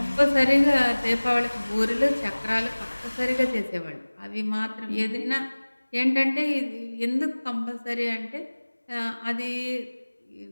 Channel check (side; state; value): both; inverted; correlation -1.00